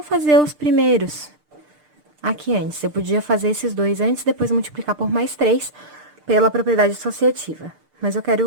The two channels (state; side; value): late; left; 6.7 ms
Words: fazer os primeiros aqui antes. Eu podia fazer esses dois antes, depois multiplicar por mais 3 pela propriedade associativa. Mas eu